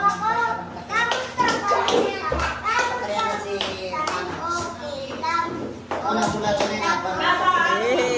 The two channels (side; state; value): both; identical; correlation 1.00